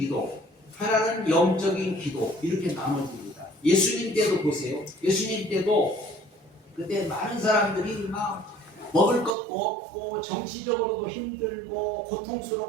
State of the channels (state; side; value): drops out; left; at 9.3 s